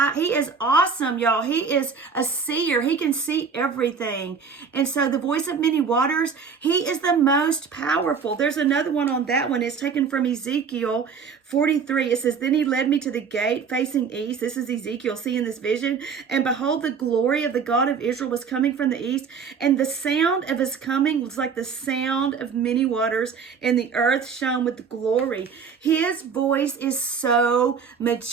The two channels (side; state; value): left; quieter; 6.0 dB